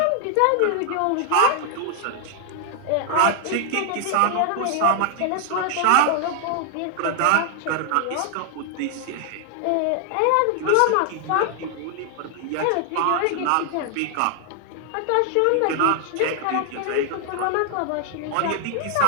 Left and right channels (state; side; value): different; both; correlation 0.00